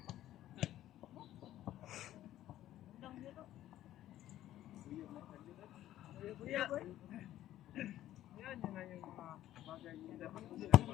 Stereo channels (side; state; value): right; quieter; 13.3 dB